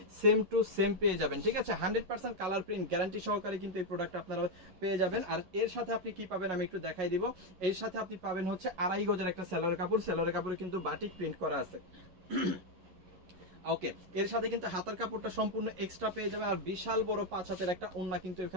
সেম টু সেম পেয়ে যাবেন। ঠিক আছে, 100% কালার প্রিন্ট গ্যারান্টি সহকারে কিন্তু এই প্রোডাক্ট আপনারা পেয়ে যাবেন। আর এর সাথে আপনি কি পাবেন আমি একটু দেখাই দিব। এর সাথে আপনি পাবেন হচ্ছে 2.5 গজের একটা সেলরের কাপড়। সেলরের কাপড়ে কিন্তু বাটিক প্রিন্ট করা আছে। ওকে, এর সাথে কিন্তু হাতার কাপড়টা সম্পূর্ণ এক্সট্রা পেয়ে যাবে। আর বিশাল বড় 5 হাতের একটা ওন্না কিন্তু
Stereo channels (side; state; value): left; late; 11 ms